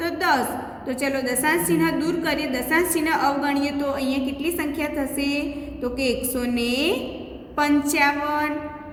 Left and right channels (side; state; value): both; identical; correlation 1.00